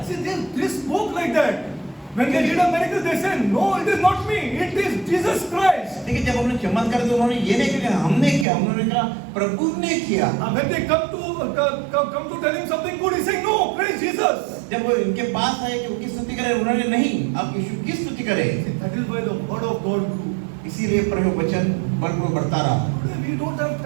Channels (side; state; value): left; drops out; at 8.5 s